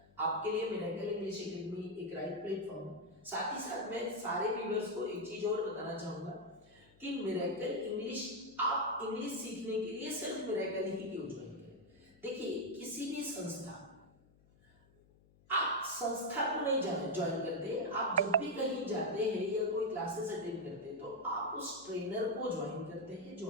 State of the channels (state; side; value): noise; left; hum, 28 dB below the sound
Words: आपके लिए मिरेकल इंग्लिश एकेडमी एक राइट प्लेटफॉर्म है। साथ ही साथ मैं सारे व्यूअर्स को एक चीज और बताना चाहूंगा कि मिरेकल इंग्लिश, आप इंग्लिश सीखने के लिए सिर्फ मिरेकल ही क्यों ज्वाइन करें? देखिए किसी भी संस्था, आप संस्था को नहीं ज्वाइन करते, आप जब भी कहीं जाते हैं या कोई क्लासेस अटेंड करते हैं तो आप उस ट्रेनर को ज्वाइन करते हैं जो